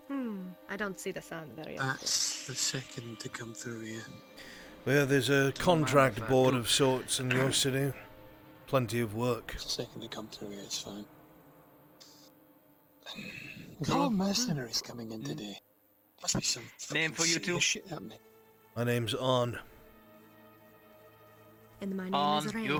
I don't see the sun very often. That's the second to come through here. Well, there's a contract board of sorts in your city. Plenty of work. Second to come through here, it's fine. There's a lot of mercenaries coming in today. Must be some Name for you serious two? shit happening. My name's Arn. And my name is Ray.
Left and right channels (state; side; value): identical; both; correlation 1.00